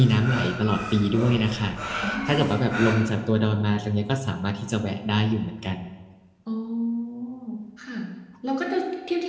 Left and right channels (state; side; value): identical; both; correlation 1.00